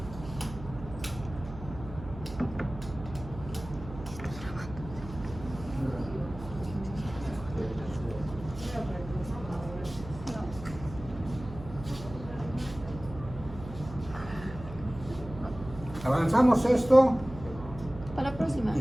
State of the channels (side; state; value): right; noise; hum, 13 dB below the sound